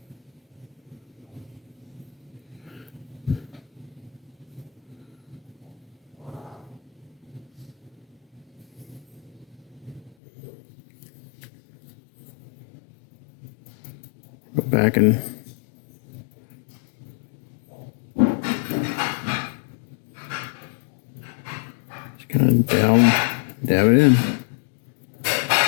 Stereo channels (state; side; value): drops out; right; at 10.1 s